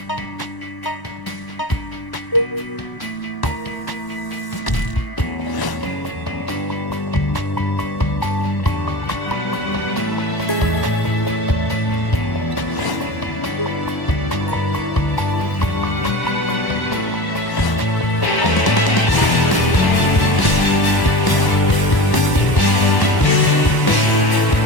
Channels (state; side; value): late; right; 1.0 ms